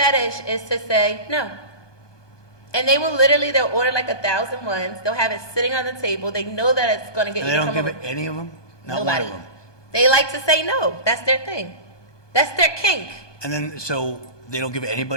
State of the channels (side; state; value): right; late; 1.2 ms